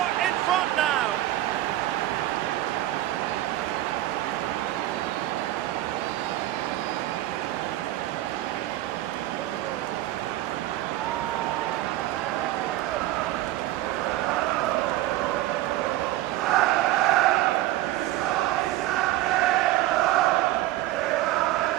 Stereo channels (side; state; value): left; quieter; 15.2 dB